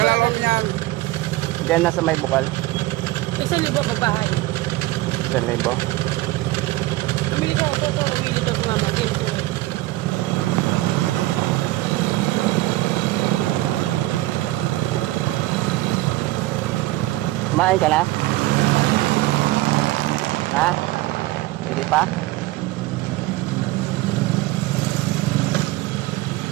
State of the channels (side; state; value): left; quieter; 18.3 dB